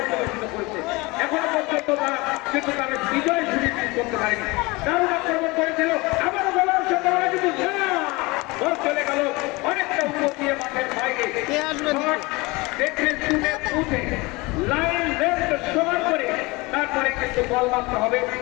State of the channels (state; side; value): quieter; right; 24.0 dB